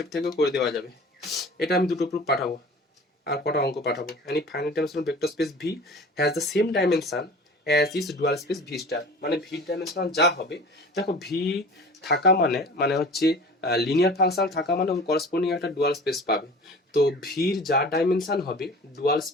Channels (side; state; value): both; normal; correlation 0.41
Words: থেকেও করে দেওয়া যাবে। এটা আমি দুটো প্রুফ পাঠাবো আর কটা অঙ্ক পাঠাবো। Any finite dimensional vector space V has the same dimension as is dual space V star, মানে ভি ডাইমেনশনাল যা হবে, দেখো ভি থাকা মানে হচ্ছে লিনিয়ার ফাংশন থাকা মানে ওর করসপন্ডিং একটা ডুয়াল স্পেস পাবে। তো ভির যা ডাইমেনশন হবে, ডুয়াল